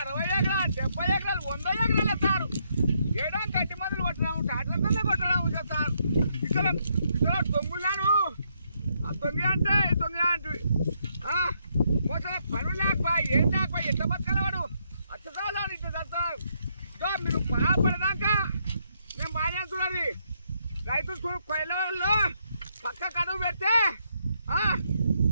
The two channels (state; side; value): inverted; both; correlation -0.75